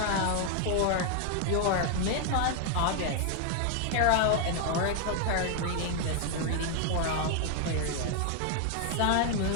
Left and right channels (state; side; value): different; both; correlation 0.00